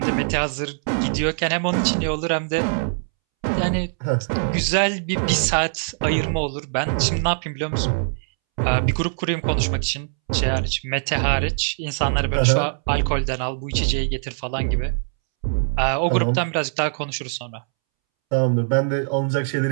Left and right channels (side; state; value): left; silent; 64 dB below the other